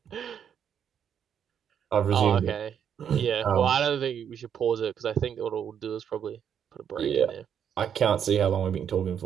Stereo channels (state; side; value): quieter; left; 8.4 dB